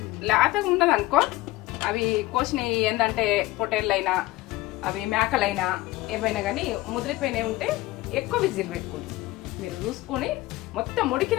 లేతగా ఉండదు అనుకో, అవి కోసినవి ఏంటంటే పొటేళ్ళైనా అవి మేకలైనా ఏమైనా కానీ ముదిరిపోయినవి ఉంటే ఎక్కువ విజిల్ పెట్టుకోండి. మీరు చూసుకొని మొత్తం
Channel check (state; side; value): quieter; right; 18.5 dB